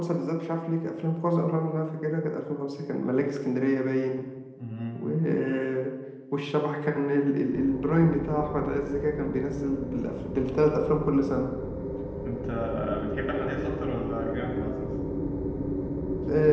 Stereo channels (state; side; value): identical; both; correlation 1.00